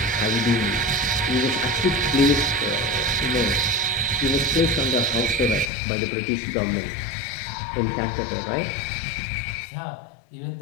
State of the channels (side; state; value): right; drops out; at 5.7 s